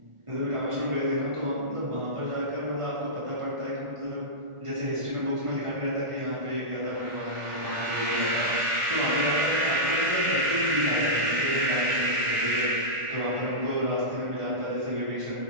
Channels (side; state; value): left; late; 1.4 ms